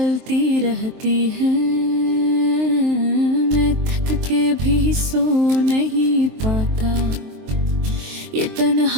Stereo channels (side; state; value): left; late; 23 ms